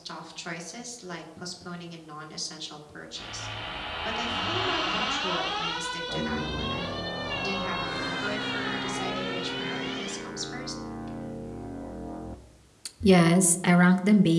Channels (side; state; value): both; identical; correlation 1.00